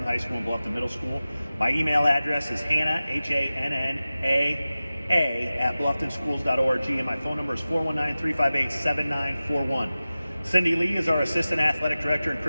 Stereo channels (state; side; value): inverted; both; correlation -0.96